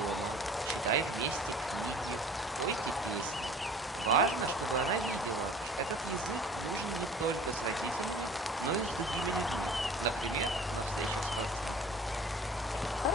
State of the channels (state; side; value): normal; both; correlation 0.46